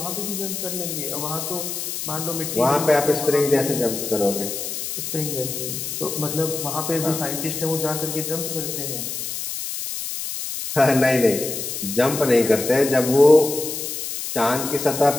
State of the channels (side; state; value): left; noise; hiss, 5 dB below the sound